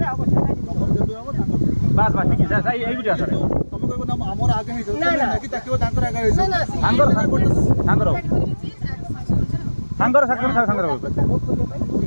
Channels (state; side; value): inverted; both; correlation -1.00